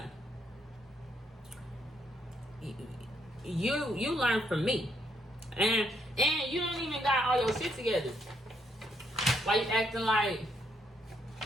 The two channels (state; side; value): normal; both; correlation 0.74